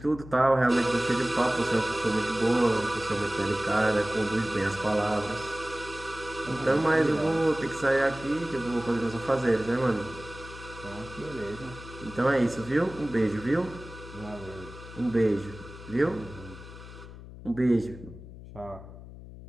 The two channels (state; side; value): noise; left; hum, 15 dB below the sound